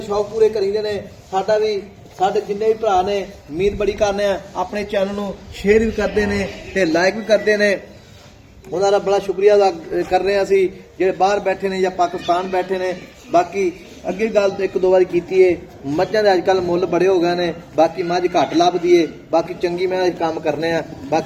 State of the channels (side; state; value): both; identical; correlation 1.00